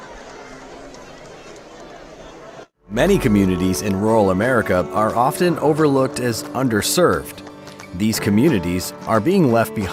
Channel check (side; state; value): both; identical; correlation 1.00